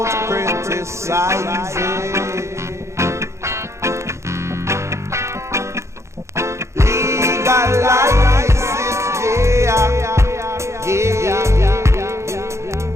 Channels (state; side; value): late; left; 0.14 ms